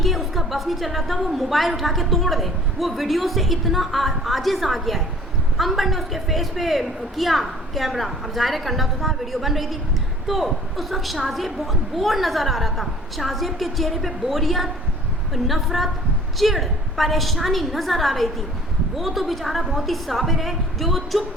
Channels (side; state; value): both; normal; correlation 0.50